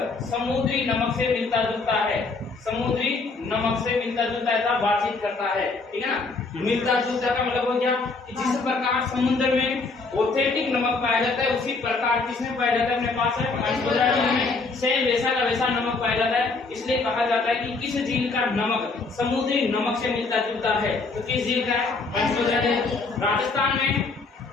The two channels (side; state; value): right; quieter; 4.0 dB